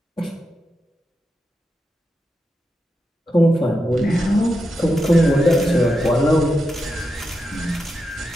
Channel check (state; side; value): normal; both; correlation 0.87